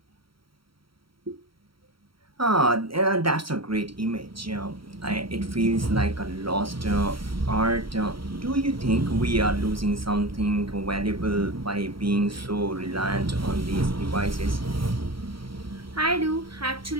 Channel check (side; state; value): left; late; 0.74 ms